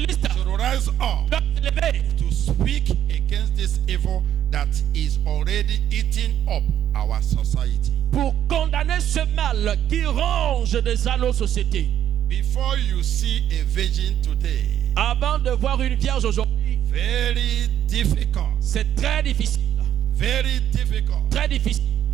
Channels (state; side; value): quieter; left; 10.5 dB